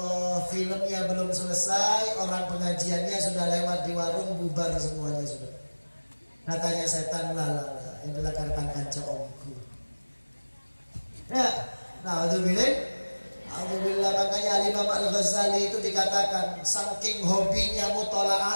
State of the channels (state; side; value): inverted; both; correlation -1.00